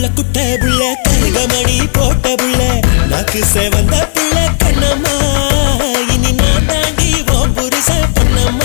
குட்ட புள்ள கருகமணி போட்ட புள்ள நாக்கு சேவந்த புள்ள கண்ணம்மா இனி நான் தாண்டி ஓம் புருஷ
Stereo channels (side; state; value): right; silent; digital silence